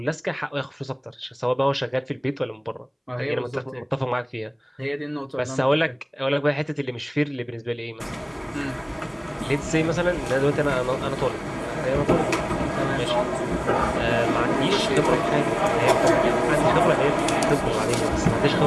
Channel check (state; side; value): identical; both; correlation 1.00